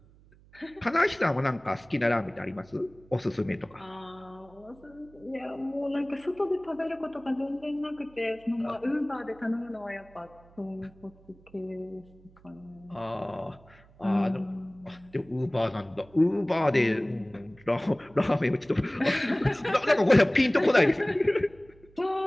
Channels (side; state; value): right; noise; hum, 26 dB below the sound